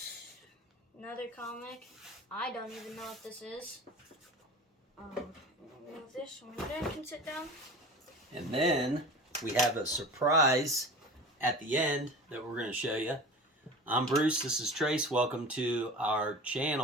another comic. I don't even know what this is. Move this one. Then can sit down. And then we have a surprise at the end that we're going to show you. I'm Bruce. This is Trace. Welcome to our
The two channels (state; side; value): normal; both; correlation 0.36